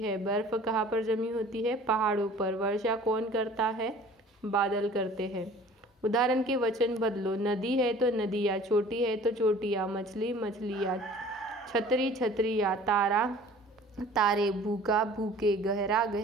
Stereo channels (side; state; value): both; normal; correlation 0.48